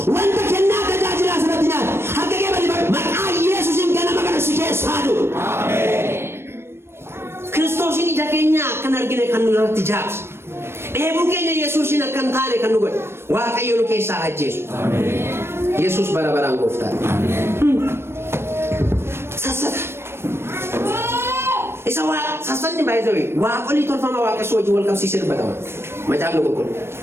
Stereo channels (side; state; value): left; late; 0.12 ms